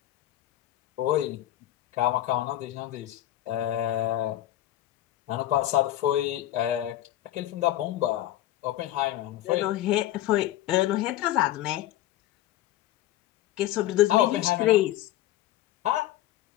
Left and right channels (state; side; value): quieter; right; 14.1 dB